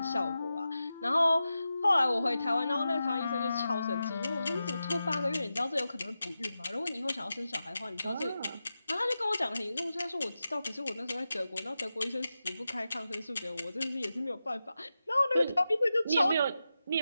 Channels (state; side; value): inverted; both; correlation -0.91